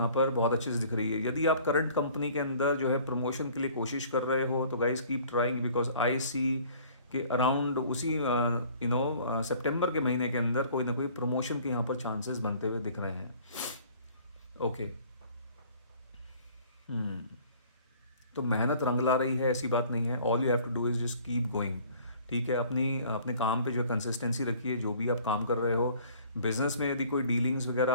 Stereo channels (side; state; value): both; inverted; correlation -0.53